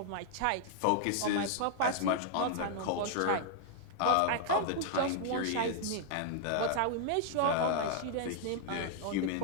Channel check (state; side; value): different; both; correlation 0.00